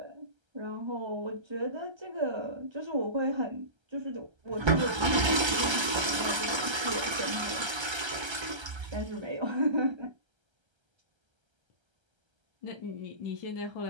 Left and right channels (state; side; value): late; left; 1.3 ms